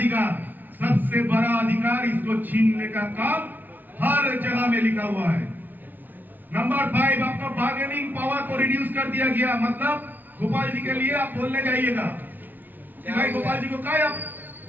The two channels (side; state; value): left; late; 0.086 ms